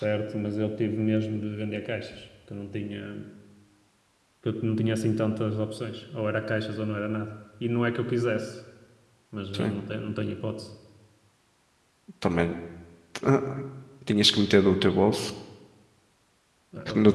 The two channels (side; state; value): both; identical; correlation 1.00